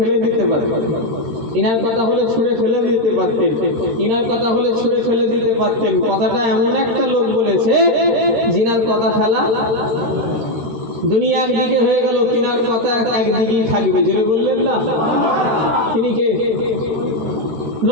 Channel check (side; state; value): left; late; 13 ms